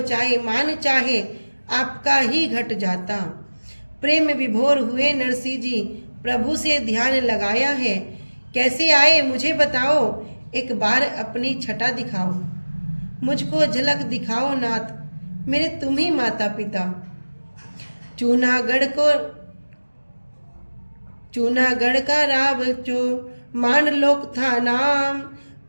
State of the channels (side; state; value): both; inverted; correlation -1.00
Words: मान चाहे, आपका ही घट जाता। प्रेम विभोर हुए नरसिंह जी, प्रभु से ध्यान लगाया है। कैसे आए मुझे बताओ, एक बार अपनी छटा दिखाओ। मुझको झलक दिखाओ नाथ, मेरे तुम ही माता पिता। चूनागढ़ का राव जो मान लोक था नाम।